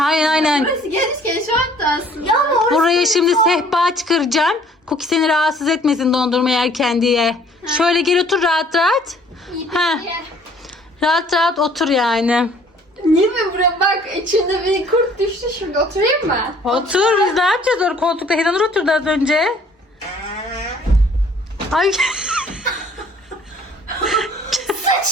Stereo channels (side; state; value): both; normal; correlation 0.57